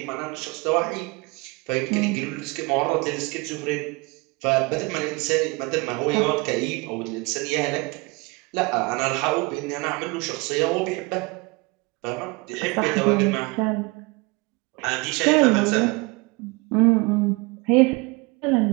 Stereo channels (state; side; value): quieter; left; 26.5 dB